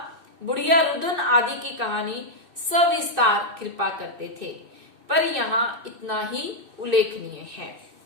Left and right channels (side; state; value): left; late; 2.6 ms